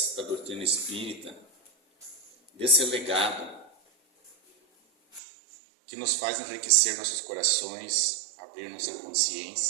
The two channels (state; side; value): drops out; left; at 5.2 s